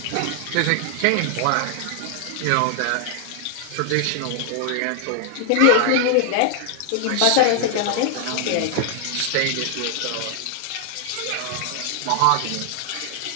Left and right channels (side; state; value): both; different; correlation 0.00